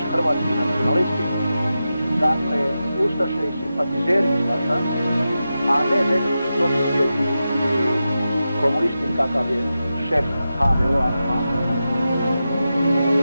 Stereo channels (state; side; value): inverted; both; correlation -0.91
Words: hrvatski nacionalisti, dakle ustaše i simpatizeri ustaša, a ne nekakvi protisvijeti komunisti kakav je šef HVO-a.